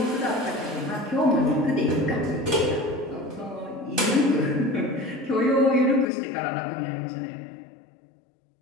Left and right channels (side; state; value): right; drops out; at 6.1 s